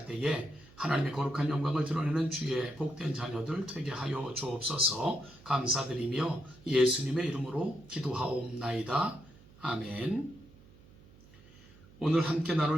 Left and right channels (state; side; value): noise; right; hum, 24 dB below the sound